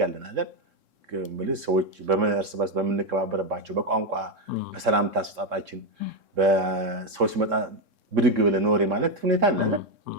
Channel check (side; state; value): left; late; 3.7 ms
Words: ያለን አይደል? ማለት ሰዎች እርስ በርስ በምንከባበርባቸው በቋንቋ በሰላምታ አሰጣጣችን በሰዎች ሲመጣ ብድግ ብለን ኖሬ ማለት ሁኔታ አለ አይደል?